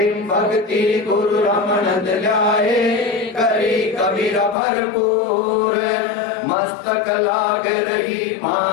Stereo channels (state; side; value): drops out; right; at 4.5 s